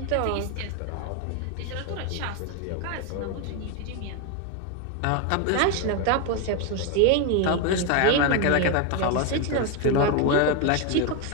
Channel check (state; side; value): different; both; correlation 0.02